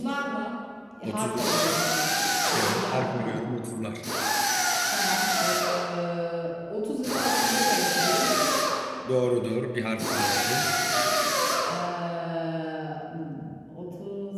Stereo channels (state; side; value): identical; both; correlation 1.00